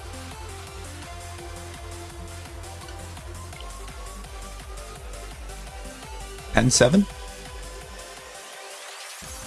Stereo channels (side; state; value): both; identical; correlation 1.00